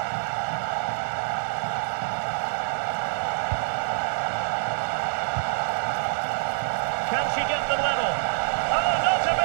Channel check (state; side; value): silent; left; digital silence